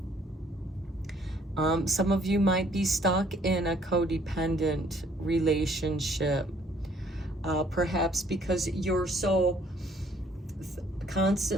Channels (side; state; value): both; normal; correlation 0.62